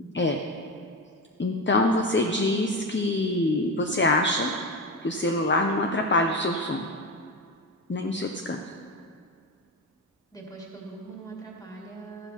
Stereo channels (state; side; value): normal; both; correlation 0.19